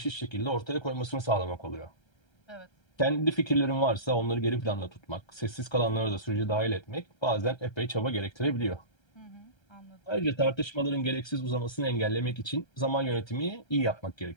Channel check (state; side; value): late; right; 1.3 ms